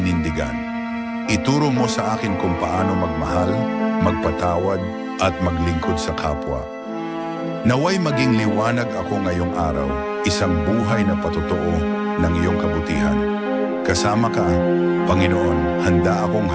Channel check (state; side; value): identical; both; correlation 1.00